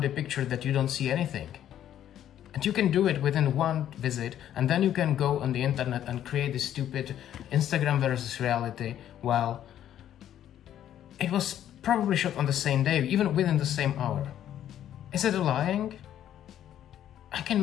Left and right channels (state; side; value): quieter; right; 11.0 dB